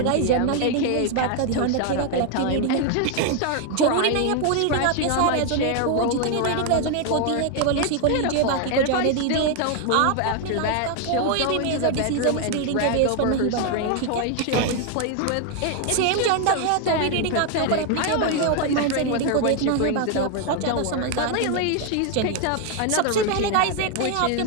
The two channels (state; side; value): different; both; correlation 0.01